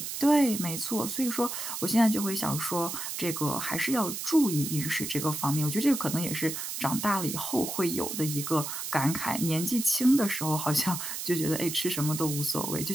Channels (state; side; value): noise; right; hiss, 5 dB below the sound